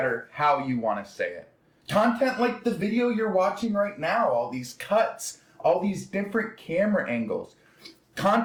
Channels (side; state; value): both; identical; correlation 1.00